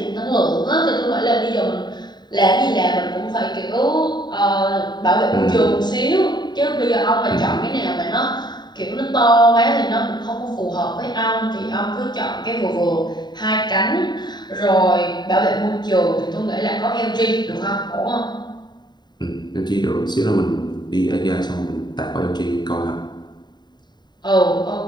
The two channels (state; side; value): late; right; 0.21 ms